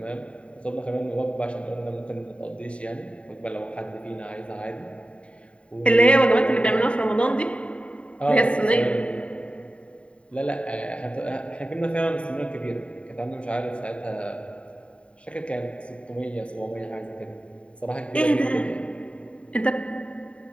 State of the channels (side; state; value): right; late; 0.061 ms